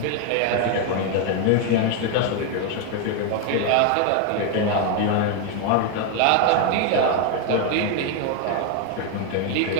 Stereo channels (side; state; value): both; different; correlation 0.01